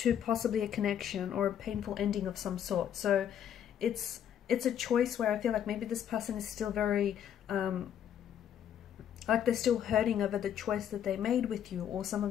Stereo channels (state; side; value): quieter; right; 9.5 dB